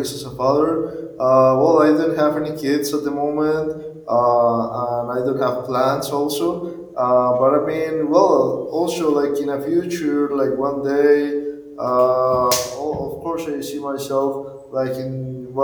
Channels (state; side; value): identical; both; correlation 1.00